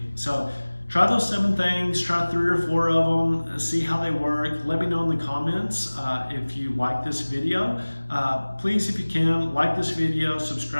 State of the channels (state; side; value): inverted; both; correlation -1.00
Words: So try those 7 things, try 3 or 4 of them, see how they work. Let me know in the comments if you like this video. Please, if you can, like this video,